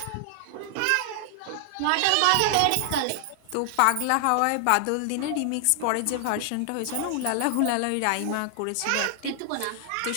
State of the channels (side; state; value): both; different; correlation 0.00